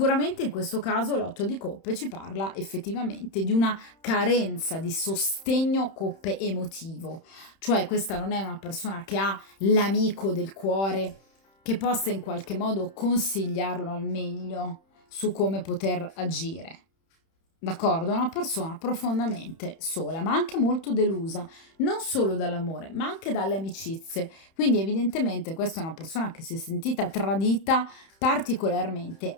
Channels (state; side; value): late; right; 31 ms